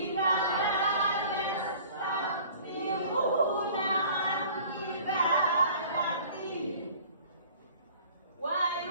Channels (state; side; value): inverted; both; correlation -0.48